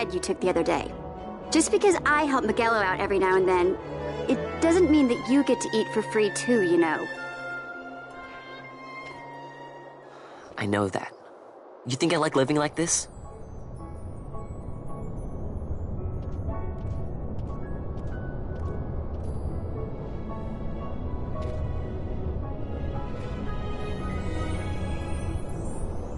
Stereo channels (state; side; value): identical; both; correlation 1.00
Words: you took the other day. Just because I help Miguelo out every now and then, it doesn't mean that you get to eat for free too, you know. I know that. You think I like living like this?